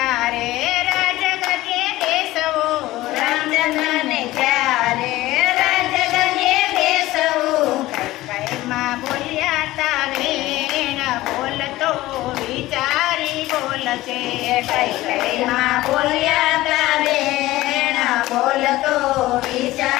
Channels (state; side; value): quieter; right; 17.2 dB